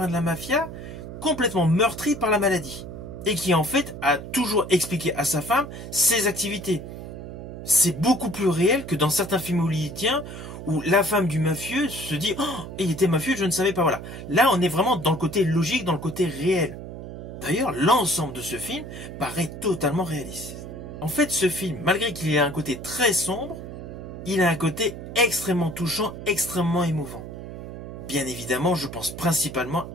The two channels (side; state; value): right; noise; hum, 10 dB below the sound